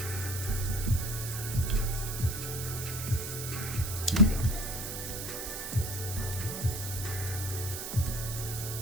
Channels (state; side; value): noise; right; hiss, 6 dB below the sound